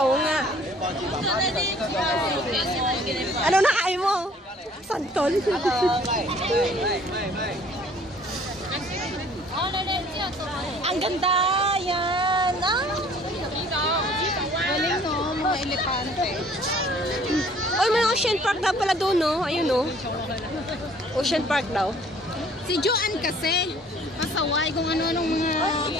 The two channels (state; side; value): normal; both; correlation 0.55